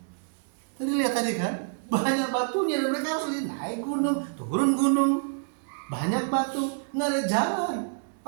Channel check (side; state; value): left; silent; digital silence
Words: Tadi lihat tadi kan, banyak batunya dan mereka harus naik gunung, turun gunung, banyak batu, nggak ada jalan.